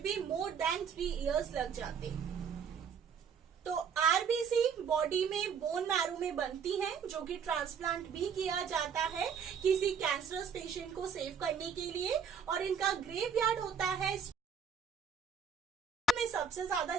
भी मोर देन 3 इयर्स लग जाते। तो आरबीसी बॉडी में बोन मैरो में बनती है, जो कि ट्रांसप्लांट भी किया जाता है किसी कैंसरस पेशेंट को सेव करने के लिए, और इनका ग्रेवयार्ड होता है में सबसे ज्यादा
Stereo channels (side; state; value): left; quieter; 6.7 dB